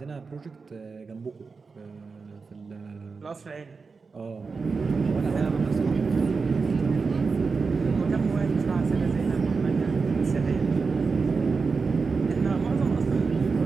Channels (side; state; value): left; quieter; 4.7 dB